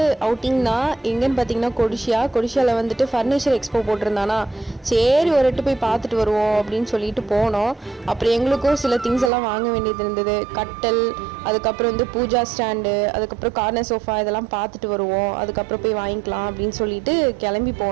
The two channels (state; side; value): drops out; left; at 9.3 s